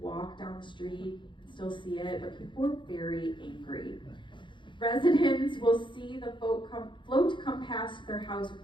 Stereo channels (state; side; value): late; right; 0.23 ms